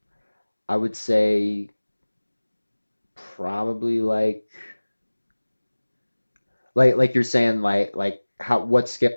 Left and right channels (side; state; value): both; inverted; correlation -1.00